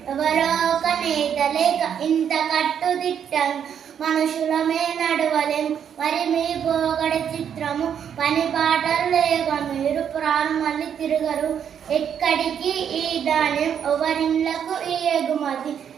నేత లేక ఇంత కట్టుదిట్టం మనుషులమే నడవలేం, మరి మీ పోగడ చిత్రము, పని పాటలు లేక మీరు పురాణం మళ్ళీ తిరగరు, ఎక్కడికి ఈ ధాన్యం ఎవరిళ్ళకు ఈ ఎగుమతి,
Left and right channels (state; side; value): quieter; left; 8.4 dB